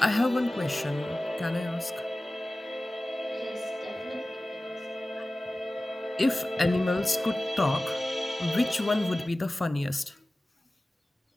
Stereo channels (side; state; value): both; normal; correlation 0.97